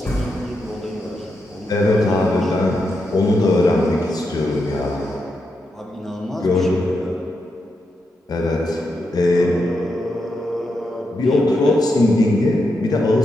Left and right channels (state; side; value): normal; both; correlation 0.84